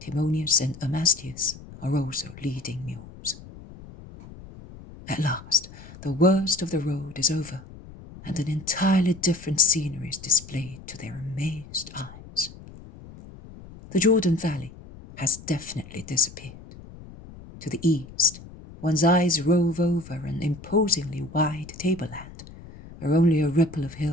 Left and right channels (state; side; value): noise; left; rumble, 17 dB below the sound